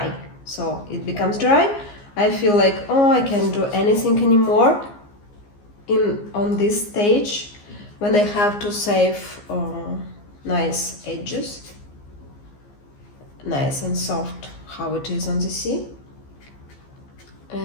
So it becomes dry, I feel like, oh, I can't do anything anymore on this stage when I have to save nice edges, nice and soft how it is on the sea,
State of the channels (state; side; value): late; right; 15 ms